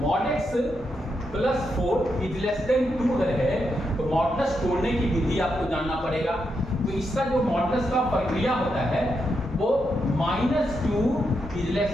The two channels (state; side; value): normal; both; correlation 0.83